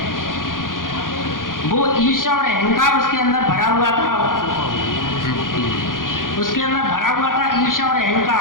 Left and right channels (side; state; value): right; late; 0.90 ms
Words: वो ईर्ष्या और अहंकार उसके अंदर भरा हुआ था, उसके अंदर भरा हुआ था ईर्ष्या और